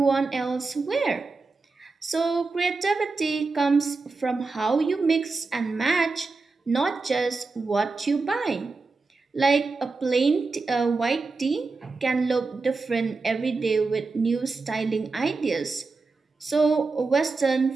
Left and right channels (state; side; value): quieter; left; 4.0 dB